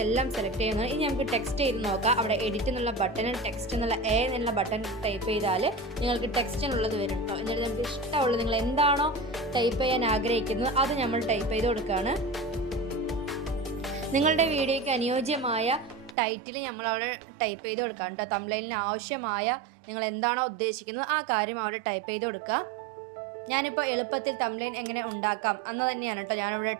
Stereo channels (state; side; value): drops out; left; at 16.2 s